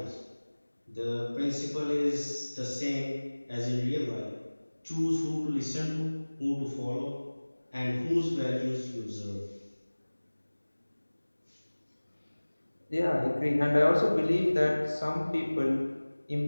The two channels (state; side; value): inverted; both; correlation -1.00